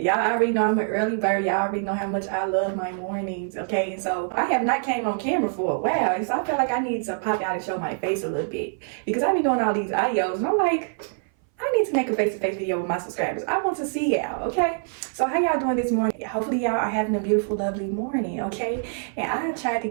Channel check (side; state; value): left; silent; 58 dB below the other